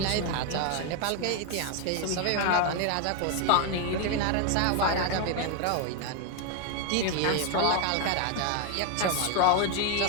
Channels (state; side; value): different; both; correlation 0.01